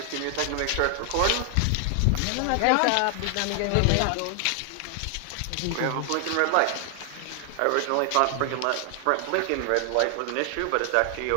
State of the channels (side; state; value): both; different; correlation 0.00